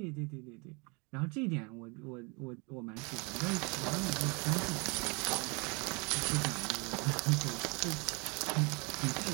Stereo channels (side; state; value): left; quieter; 30.9 dB